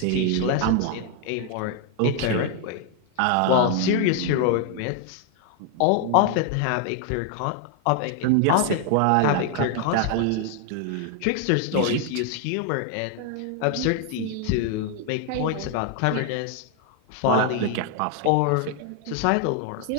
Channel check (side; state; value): both; different; correlation 0.00